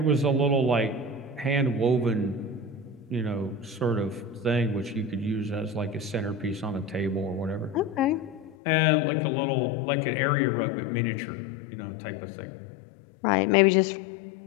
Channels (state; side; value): drops out; right; at 8.6 s